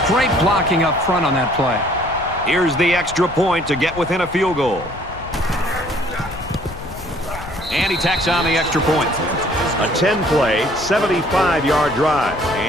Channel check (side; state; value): left; noise; rumble, 14 dB below the sound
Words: great blocking up front on that play. Here's the extra point to get within a field goal. And he tacks on the extra point. A 10-play, 75-yard drive,